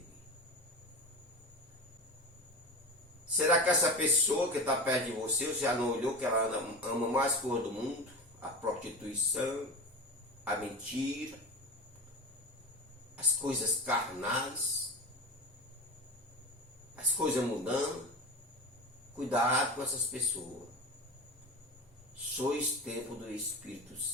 Será que essa pessoa que está perto de você, você já não olhou que ela ama mais coisa do mundo? A prostituição, a mentira, as coisas carnais, as coisas mudando. Cuidado com essas pessoas. Sois templo do Espírito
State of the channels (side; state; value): both; normal; correlation 0.27